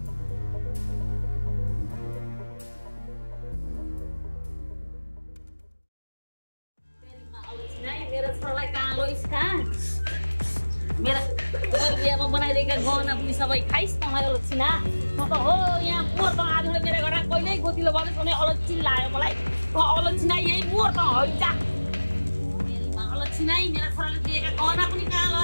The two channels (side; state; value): both; inverted; correlation -1.00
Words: मेरा बनाइदिएका गहना पनि सबै खाइस् त मलाई अलक्षिना। म त हो यहाँ मोर त आज मेरो घर कहिल्यै गोतिलो भन्नुहोस् भने अलक्षिन लाग्यो मलाई। अलक्षिना यही मोर त हैजा मेरीमा अलक्षिना मेरो छोराले दिएका गहना पनि कहाँ